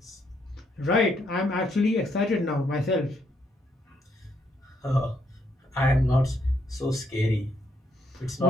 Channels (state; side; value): normal; both; correlation 0.74